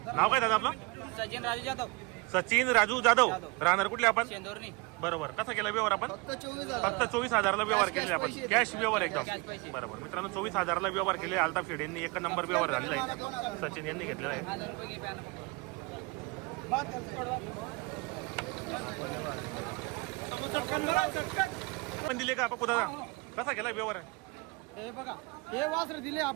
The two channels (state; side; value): quieter; left; 26.5 dB